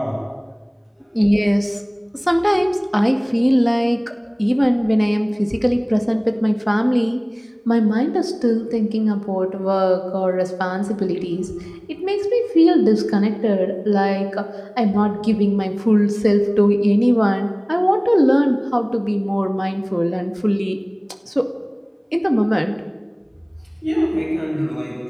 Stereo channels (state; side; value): identical; both; correlation 1.00